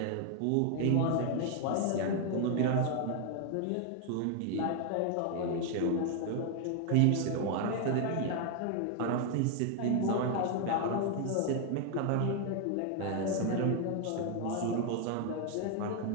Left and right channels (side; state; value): both; different; correlation 0.00